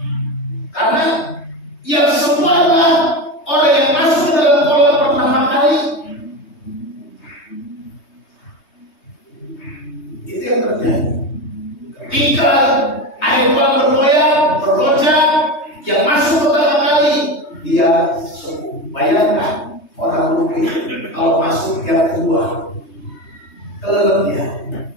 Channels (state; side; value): late; right; 3.2 ms